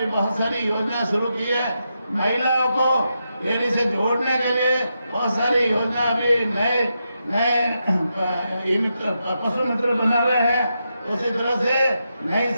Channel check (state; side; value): inverted; both; correlation -0.85